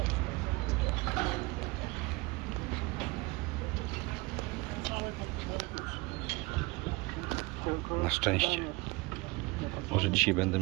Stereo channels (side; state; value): left; quieter; 24.2 dB